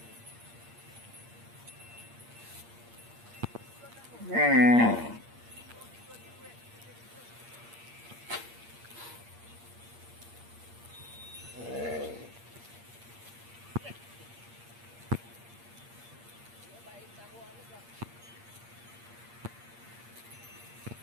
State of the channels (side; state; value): left; late; 8.6 ms